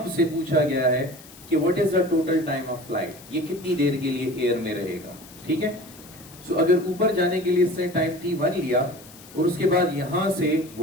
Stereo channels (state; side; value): noise; left; hiss, 20 dB below the sound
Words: पूछा गया है कि what is the total time of flight, ये कितनी देर के लिए एयर में रहेगा, ठीक है? सो अगर ऊपर जाने के लिए इसने टाइम t1 लिया और उसके बाद यहाँ से